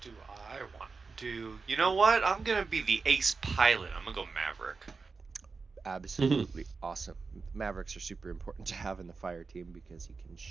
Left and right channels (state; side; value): quieter; left; 4.5 dB